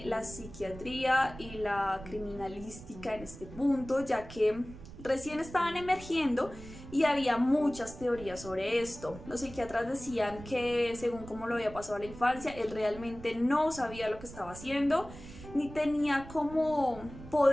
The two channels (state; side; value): noise; right; rumble, 15 dB below the sound